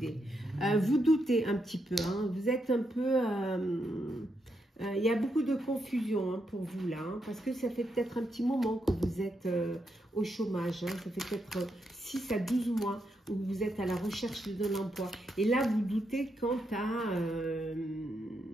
Vous doutez un petit peu, hein, vous êtes un peu... il y a beaucoup de confusion, hein, pour vous là, hein, parce que ça fait peut-être un petit moment que vous êtes au chômage, hein, ça fait peut-être 6 à 12 mois où vous êtes à la recherche d'un emploi. Et là, vous doutez quant à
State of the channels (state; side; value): normal; both; correlation 0.81